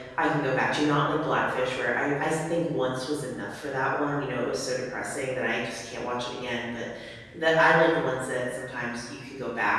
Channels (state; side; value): identical; both; correlation 1.00